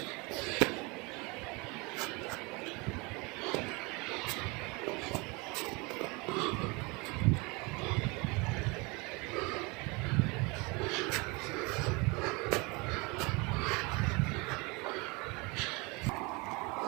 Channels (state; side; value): quieter; left; 27.3 dB